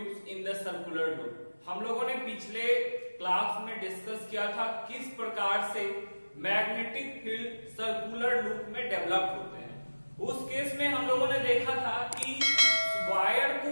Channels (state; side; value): inverted; both; correlation -1.00